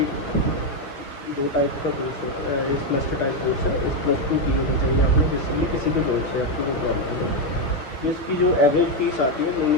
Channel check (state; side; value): late; right; 6.8 ms